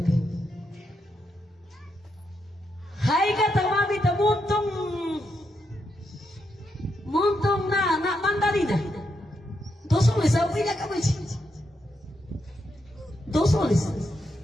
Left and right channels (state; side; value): normal; both; correlation 0.81